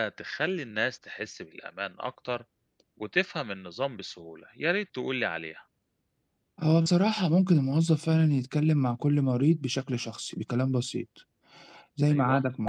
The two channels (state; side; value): identical; both; correlation 1.00